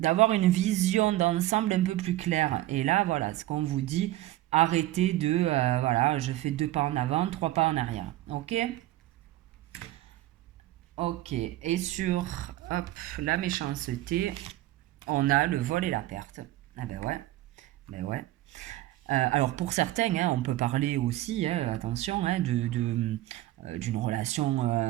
une vision d'ensemble un peu plus claire. Et là, voilà, ce qu'on vous dit, arrêtez de, voilà, je fais 2 pas en avant, 3 pas en arrière. Ok? Ok. Et sur, hop, la méchanceté, on a le vol et la perte. Ah ben ouais, ben ouais. Alors pour certains, hein, on peut parler aussi, hein, attention, hein, d'une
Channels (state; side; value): quieter; left; 15.9 dB